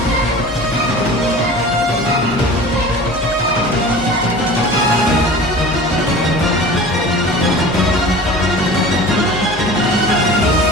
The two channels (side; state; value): both; normal; correlation 0.39